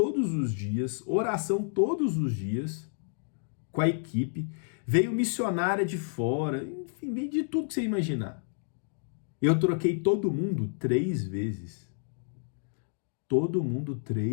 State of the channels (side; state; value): right; silent; digital silence